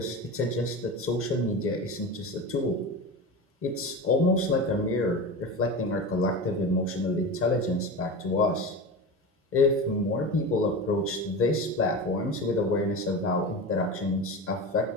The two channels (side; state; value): both; normal; correlation 0.26